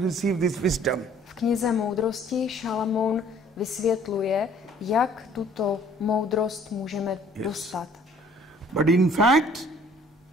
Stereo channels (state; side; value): normal; both; correlation 0.56